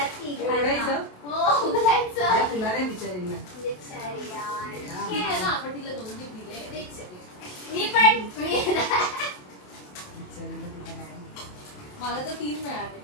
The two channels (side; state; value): right; late; 27 ms